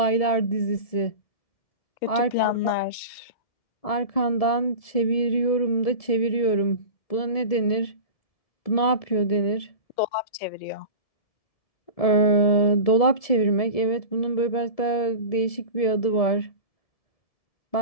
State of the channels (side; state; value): right; late; 1.7 ms